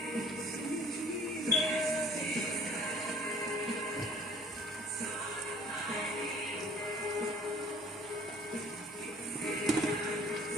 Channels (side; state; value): both; normal; correlation 0.53